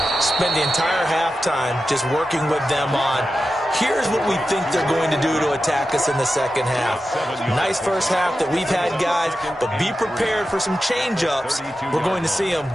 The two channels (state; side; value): normal; both; correlation 0.91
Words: spent the entire halftime just working with them on here's what we think they're going to do to attack us in the second half. Nice first half that we've had, guys, but be prepared for some change-ups. We're going to see them